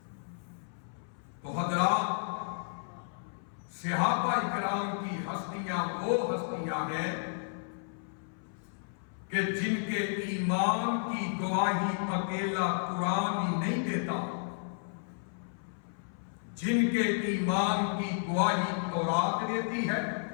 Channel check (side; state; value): right; silent; 56 dB below the other